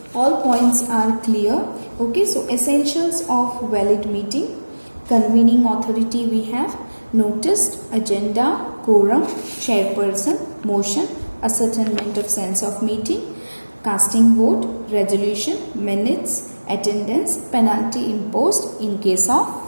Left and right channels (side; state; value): both; inverted; correlation -1.00